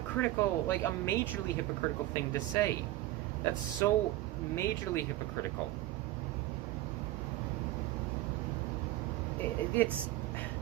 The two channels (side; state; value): left; quieter; 15.9 dB